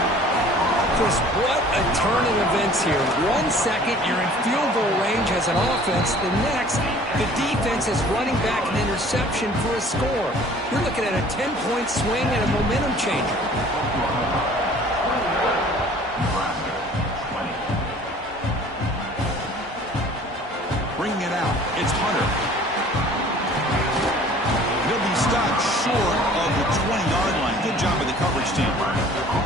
Chris, what a turn of events here. 1 second, you're in field goal range as an offense. The next, the defense is running back an interception for a score. You're looking at a 10-point swing and a momentum changer. Bringing it out, it's Hunter. He'll be stopped short of the 20-yard line. Good job of the coverage team.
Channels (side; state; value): both; normal; correlation 0.50